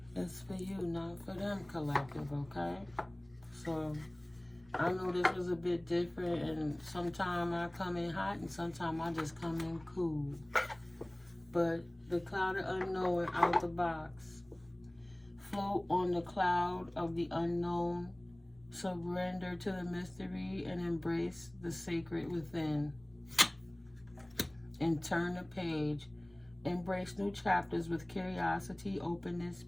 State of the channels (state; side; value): noise; left; rumble, 27 dB below the sound